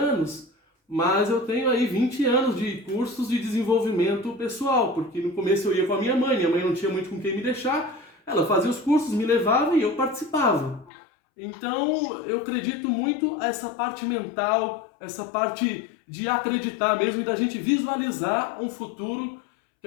mas eu tenho aí 20 anos de cursos de desenvolvimento pessoal, porque no começo eu ia com a minha mãe não tinha muito com quem me deixar, ela fazia os cursos, me levava e eu participava. Então eu acredito muito essa parte mental, essa parte de acreditar mesmo e da gente visualizar um futuro que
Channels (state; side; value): drops out; right; at 10.9 s